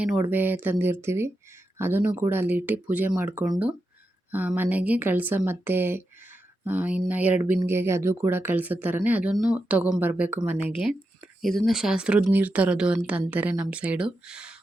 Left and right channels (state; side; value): normal; both; correlation 0.88